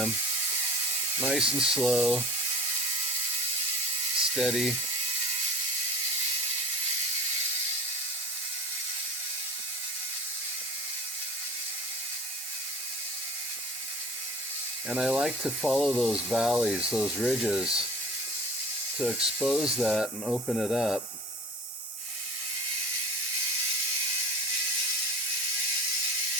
Nice and slow. Steady. And I like to follow those valleys, those ridges, to expose that and open it up.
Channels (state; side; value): normal; both; correlation 0.39